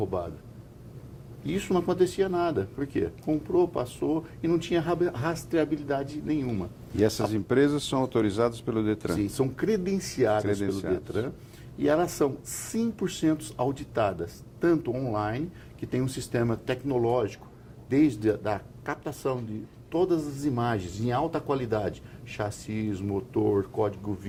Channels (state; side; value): identical; both; correlation 1.00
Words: E isso não acontecia nada. Por quê? Comprou, passou e não tinha rastreabilidade nenhuma. E essas empresas são autorizadas pelo Detran? Sim, são credenciadas pelo Detran e elas são 100% auditadas, tanto online, que tem um sistema tecnológico, desde a captação de todas as imagens em alta qualidade, chassis, motor, código